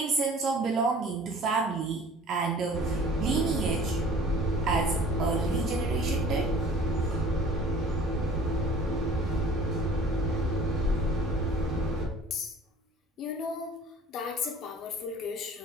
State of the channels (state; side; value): normal; both; correlation 0.48